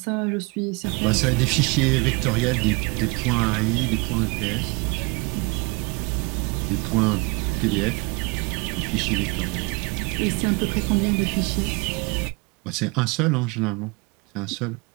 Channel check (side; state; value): left; quieter; 28.5 dB